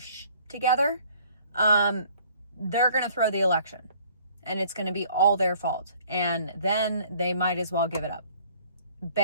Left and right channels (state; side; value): inverted; both; correlation -0.57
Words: together, they're going to throw the election. And it's going to be all their fault. And then they might as well give it up.